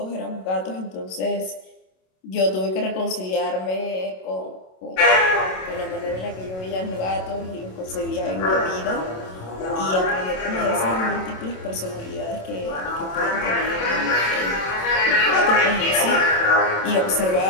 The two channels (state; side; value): late; right; 27 ms